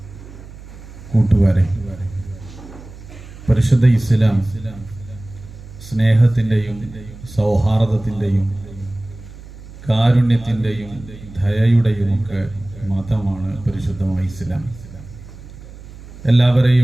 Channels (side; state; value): right; noise; hum, 17 dB below the sound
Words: കൂട്ടുകാരെ, പരിശുദ്ധ ഇസ്ലാം സ്നേഹത്തിൻ്റെയും സൗഹാർദ്ദത്തിൻ്റെയും കാരുണ്യത്തിൻ്റെയും ദയയുടെയും ഒക്കെ മതമാണ് പരിശുദ്ധമായ ഇസ്ലാം.